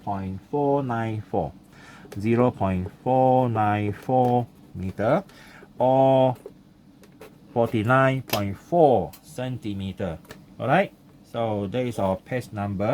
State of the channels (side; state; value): both; identical; correlation 1.00